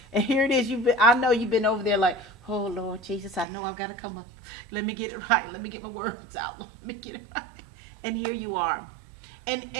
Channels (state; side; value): drops out; left; at 3.5 s